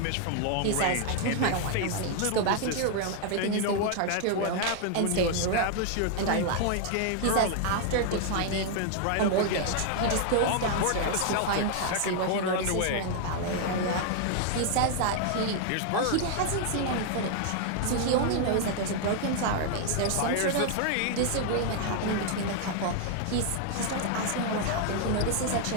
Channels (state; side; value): different; both; correlation 0.00